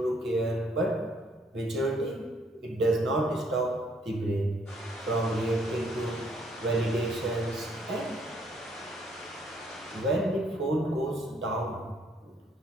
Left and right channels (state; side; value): normal; both; correlation 0.66